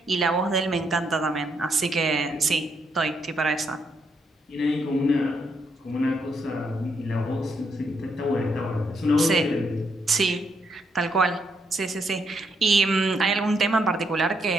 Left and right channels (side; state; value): both; normal; correlation 0.76